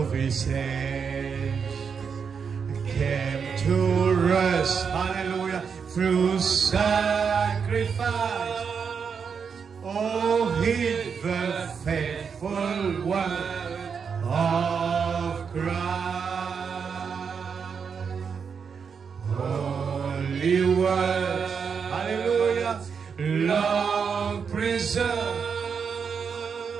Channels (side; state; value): left; quieter; 6.3 dB